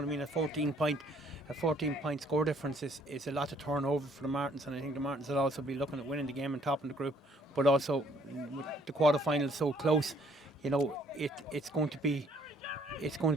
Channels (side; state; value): both; normal; correlation 0.63